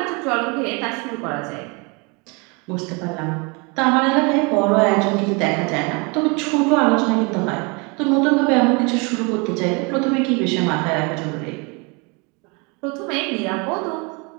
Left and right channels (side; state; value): left; quieter; 30.3 dB